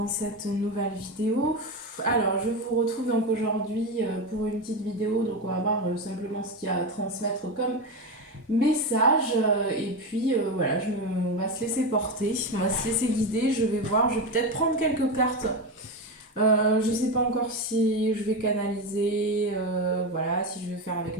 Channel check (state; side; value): normal; both; correlation 0.16